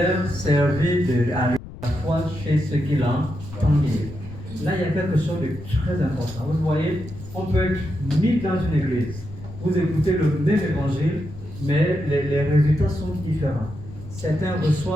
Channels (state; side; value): noise; left; rumble, 14 dB below the sound